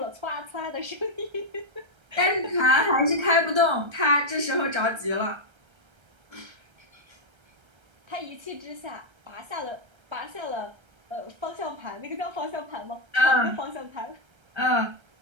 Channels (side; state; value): left; late; 1.3 ms